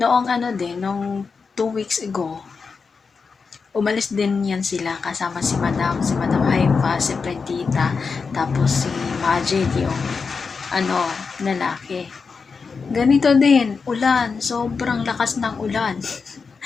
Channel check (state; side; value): quieter; right; 5.1 dB